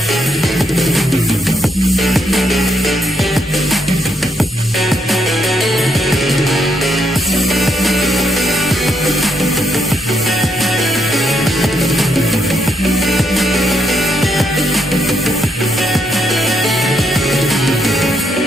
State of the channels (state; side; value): normal; both; correlation 0.76